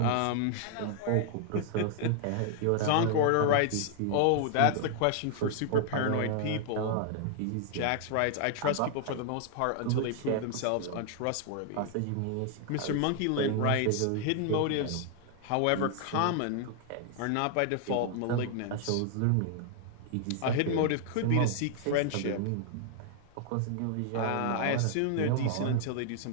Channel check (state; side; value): different; both; correlation 0.00